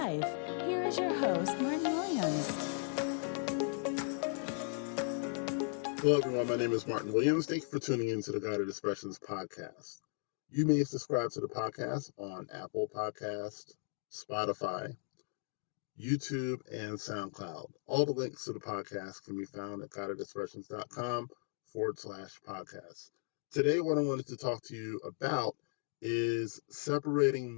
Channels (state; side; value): silent; right; 53 dB below the other